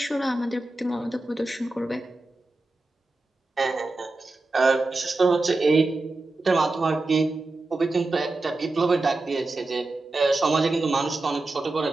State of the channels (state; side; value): quieter; left; 3.1 dB